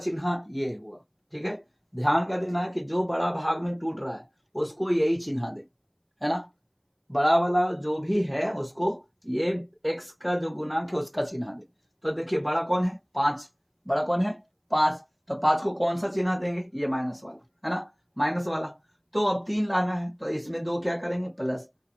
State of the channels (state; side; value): identical; both; correlation 1.00